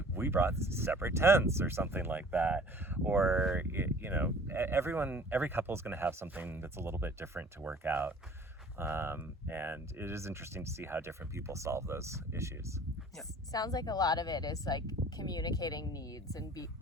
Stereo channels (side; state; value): both; normal; correlation 0.49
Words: we brought separate tents or something like that. Or, you know, every couple is going to have something that's a little bit different to work out. And it is interesting to see how different people solve those issues. Yeah. Sounds like a lot of it is like communicating needs and